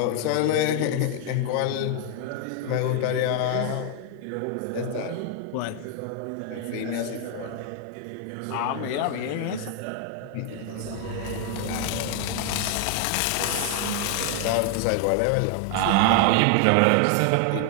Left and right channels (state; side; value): different; both; correlation 0.00